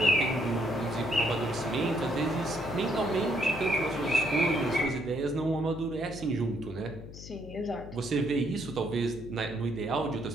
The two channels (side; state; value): left; noise; hum, 14 dB below the sound